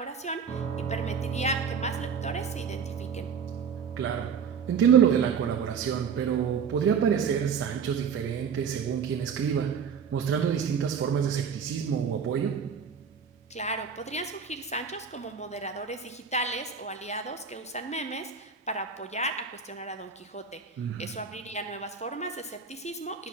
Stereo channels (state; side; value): quieter; left; 6.6 dB